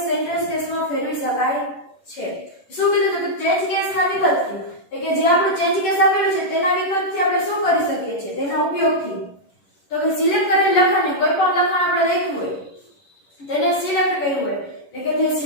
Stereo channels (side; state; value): right; late; 11 ms